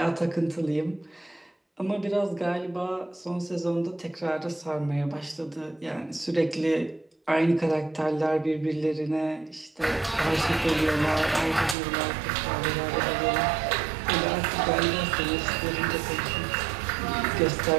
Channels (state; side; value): drops out; left; at 11.8 s